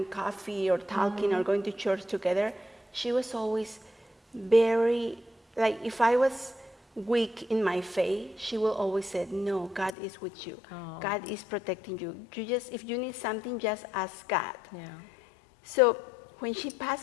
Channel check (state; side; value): drops out; right; at 10.0 s